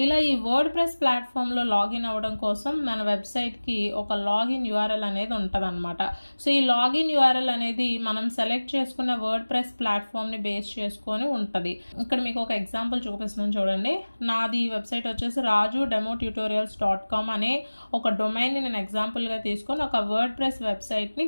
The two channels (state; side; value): inverted; both; correlation -1.00